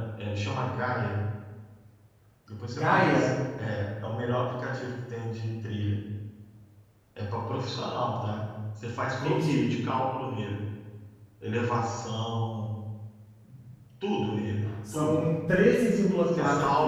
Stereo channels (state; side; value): identical; both; correlation 1.00